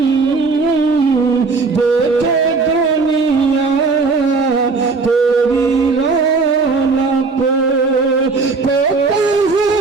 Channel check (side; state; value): left; quieter; 4.3 dB